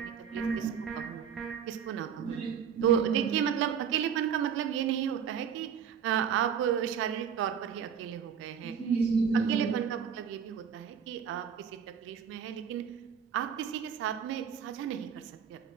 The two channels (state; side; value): quieter; left; 7.7 dB